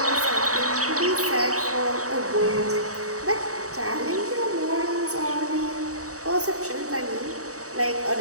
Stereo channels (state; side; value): late; left; 0.66 ms